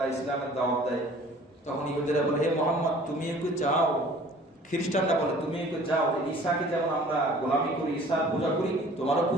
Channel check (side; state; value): both; normal; correlation 0.50